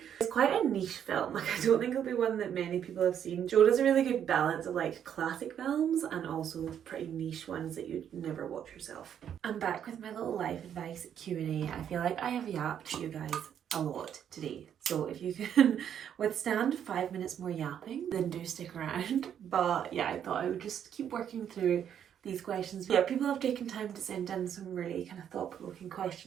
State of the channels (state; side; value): quieter; left; 9.1 dB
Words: It's quite a niche film, like I don't think it'll be one that many people have seen. Joe does a really good balance of like classic films and also pretty niche ones that you'd never watch yourself. I'm back with my little life advice Q&A. I feel like I have yapped to you guys a lot today. So if you can withstand 5 minutes more yapping, then do stick around. But yeah, I thought I would just keep working through these questions. Yeah, people have taken time to send in some really kind of thought-provoking